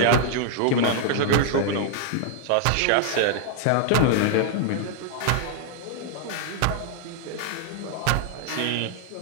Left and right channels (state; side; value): different; both; correlation 0.00